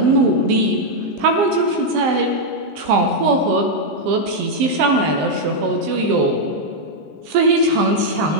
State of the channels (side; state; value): left; late; 19 ms